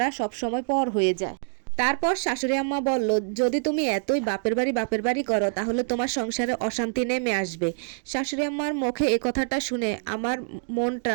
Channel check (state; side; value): silent; left; digital silence